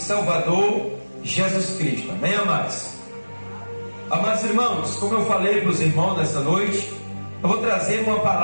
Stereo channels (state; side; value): inverted; both; correlation -1.00